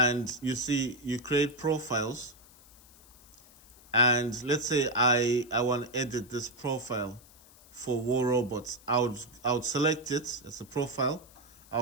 you create profiles, and let's say I want to edit this profile for War Robots. I would select it as a profile.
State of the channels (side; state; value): left; noise; hiss, 24 dB below the sound